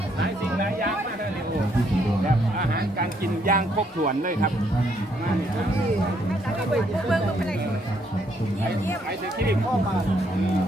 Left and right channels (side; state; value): both; normal; correlation 0.71